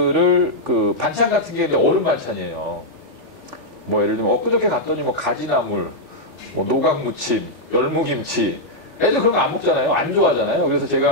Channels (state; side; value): late; left; 3.5 ms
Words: 그 반찬 같은 게 얼음 반찬이에요. 뭐 예를 들면 엊그저께 갔더니 뭐 가지나물, 뭐 노각무침, 열무김치. 애들 그런 거 안 먹잖아요. 안 좋아하잖아요. 그래서